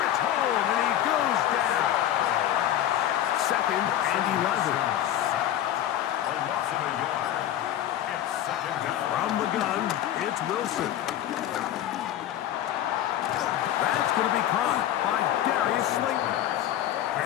home, and he goes down. 2nd and 11. From the gun, it's Wilson. That's going to be caught by Darius Slayton.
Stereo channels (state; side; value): quieter; right; 11.9 dB